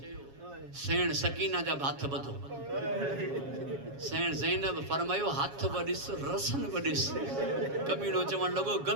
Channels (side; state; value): left; late; 7.2 ms